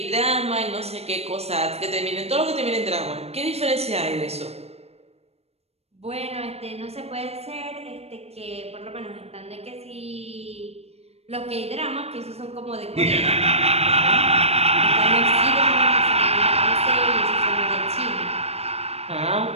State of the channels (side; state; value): left; late; 0.30 ms